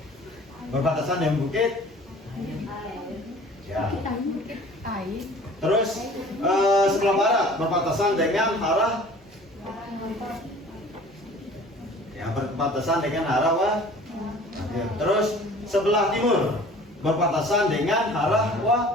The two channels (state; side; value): normal; both; correlation 0.47